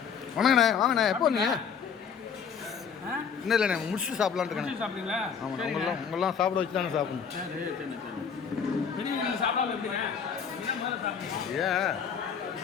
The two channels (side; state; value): right; quieter; 6.9 dB